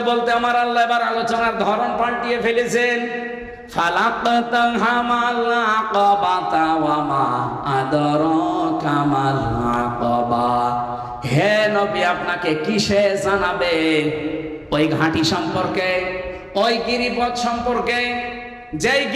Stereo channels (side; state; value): both; identical; correlation 1.00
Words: বলতে আমার আল্লাহ এবার আলোচনার ধরন পাল্টিয়ে ফেলেছেন। ফালাকতাহামাল আকাবাতা ওয়া মা আদরাকা মাল আকাবা। হে নবী, আপনাকে কিসে জানাবে? ওই ঘাঁটি সম্পর্কে, ওই গিরিপথ সম্পর্কে, যেই